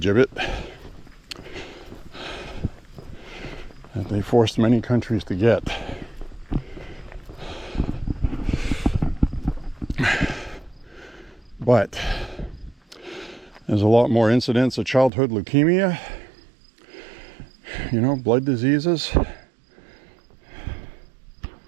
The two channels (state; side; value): drops out; left; at 15.1 s